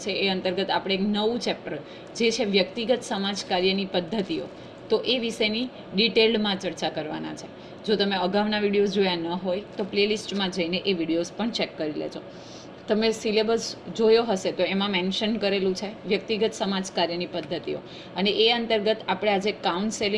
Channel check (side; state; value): both; identical; correlation 1.00